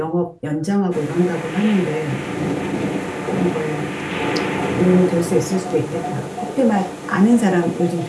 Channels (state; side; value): identical; both; correlation 1.00